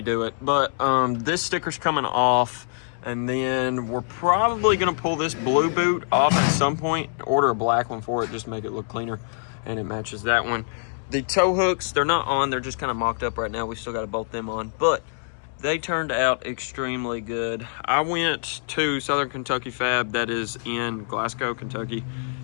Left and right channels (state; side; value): silent; right; 62 dB below the other